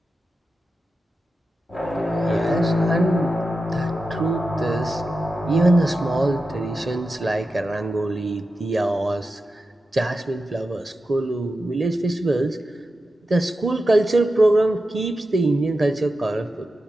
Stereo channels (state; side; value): normal; both; correlation 0.91